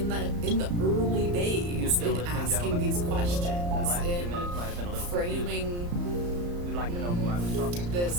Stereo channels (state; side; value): late; left; 34 ms